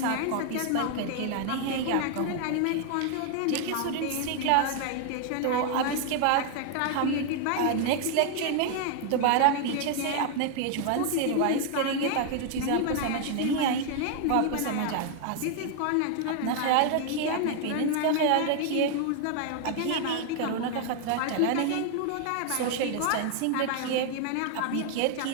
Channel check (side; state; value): both; different; correlation 0.00